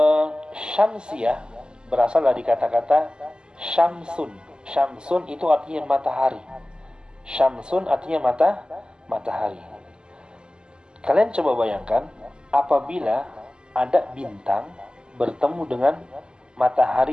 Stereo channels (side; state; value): left; late; 0.047 ms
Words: syamsiyah berasal dari kata-kata syamsun. Syamsun itu artinya matahari. Syamsun artinya matahari. Kalian coba bayangkan apabila ada bintang bertemu dengan